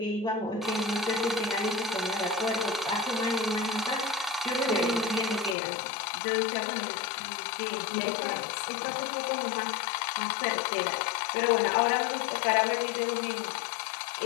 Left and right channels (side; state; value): right; drops out; at 5.6 s